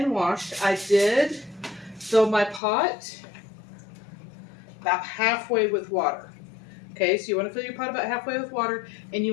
washed. I did fill my pot about halfway with water. Okay, so you want to fill your pot about halfway with water, and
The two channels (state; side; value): drops out; right; at 2.6 s